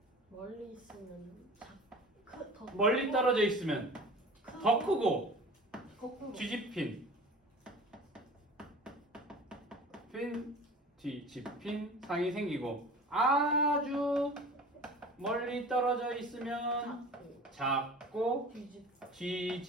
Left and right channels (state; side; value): normal; both; correlation 0.40